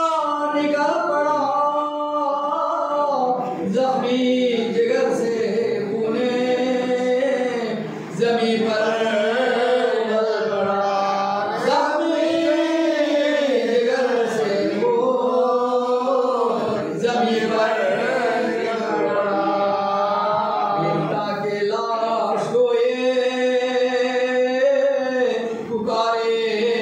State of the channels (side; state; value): both; identical; correlation 1.00